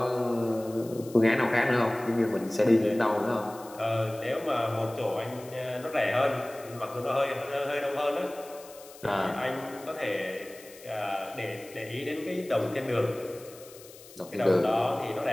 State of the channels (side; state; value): left; noise; hiss, 20 dB below the sound